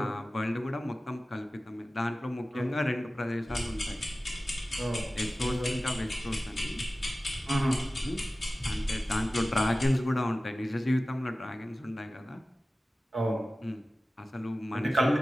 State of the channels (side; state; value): both; normal; correlation 0.96